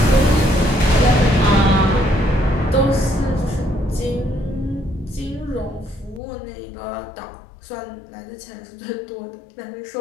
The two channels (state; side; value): drops out; right; at 6.2 s